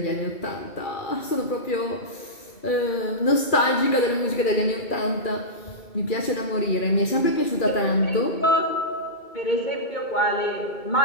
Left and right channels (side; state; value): right; late; 2.3 ms